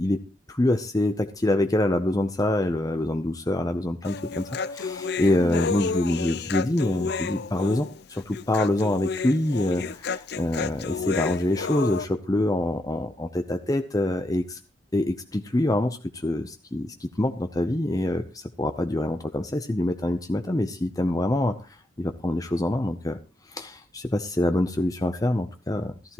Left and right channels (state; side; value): normal; both; correlation 0.79